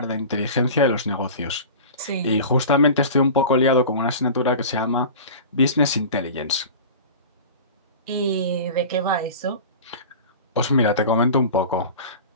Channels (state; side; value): inverted; both; correlation -0.35